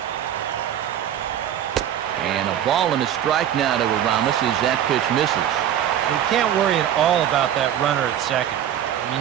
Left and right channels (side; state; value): left; quieter; 10.5 dB